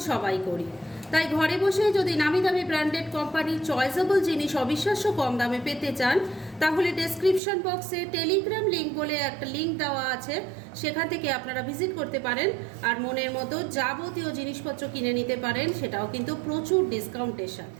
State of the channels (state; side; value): drops out; left; at 7.4 s